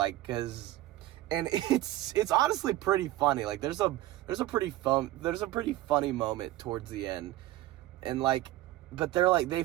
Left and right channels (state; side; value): quieter; left; 16.0 dB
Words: cause, and it's honestly pretty funny. Like there's a pretty funny moment towards the end, and like, but they're like, they